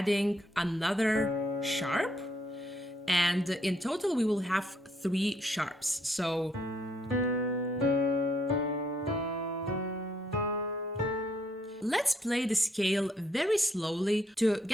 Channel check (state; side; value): normal; both; correlation 0.72